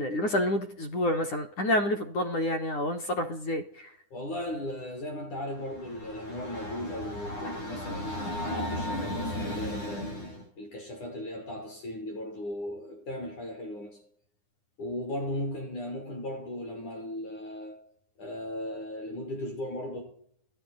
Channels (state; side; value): late; right; 9.8 ms